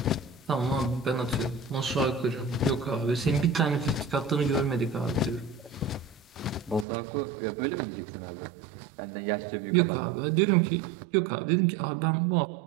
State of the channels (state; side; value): drops out; left; at 6.9 s